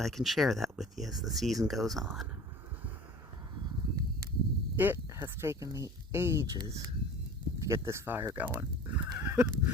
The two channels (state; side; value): normal; both; correlation 0.42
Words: I can share that with you as the season goes on. It has taken me ages to get this fire going.